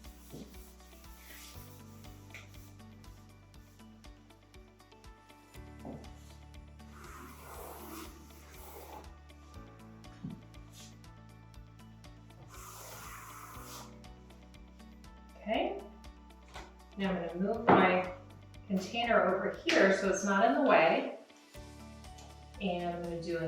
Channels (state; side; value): identical; both; correlation 1.00